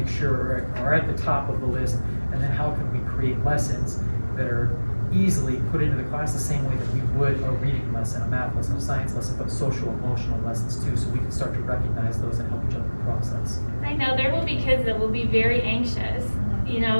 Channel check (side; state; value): both; inverted; correlation -1.00